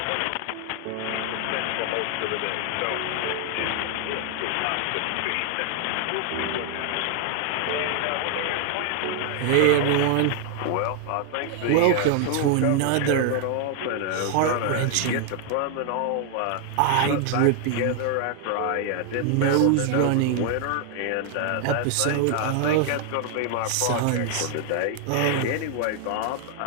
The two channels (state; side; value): different; both; correlation 0.00